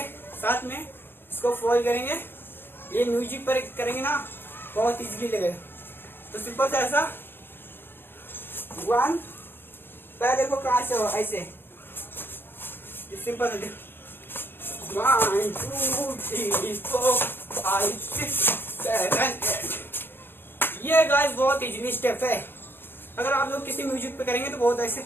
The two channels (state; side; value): late; right; 0.10 ms